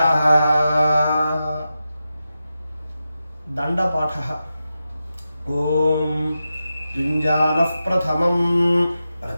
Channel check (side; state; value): both; inverted; correlation -0.91